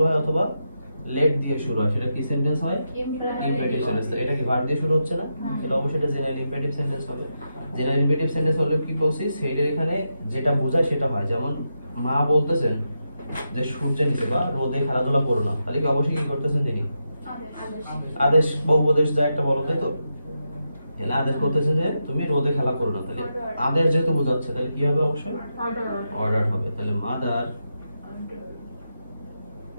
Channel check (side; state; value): both; inverted; correlation -0.86